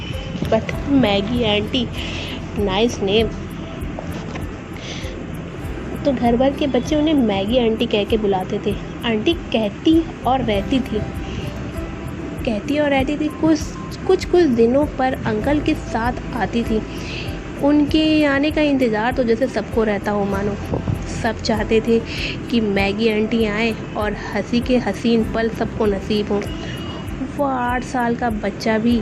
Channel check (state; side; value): identical; both; correlation 1.00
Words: But Maggie auntie, nice name. तो घर भर के बच्चे उन्हें मैगी आंटी कह के बुलाते थे। आंटी कहती और रहती थी कुछ दिनों पर अंकल के साथ आती थी। उनके आने का इंतज़ार तो जैसे सबको रहता हो मानो। सब चाहते थे कि मैगी आंटी आए और हंसी के हसीन पल सबको नसीब हों। वो 8 साल का बच्चा भी